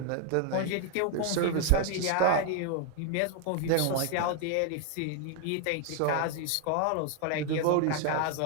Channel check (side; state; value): both; different; correlation 0.00